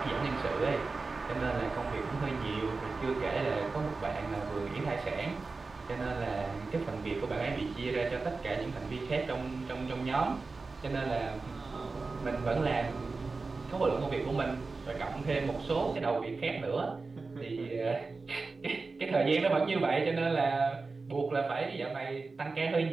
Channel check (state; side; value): quieter; left; 4.0 dB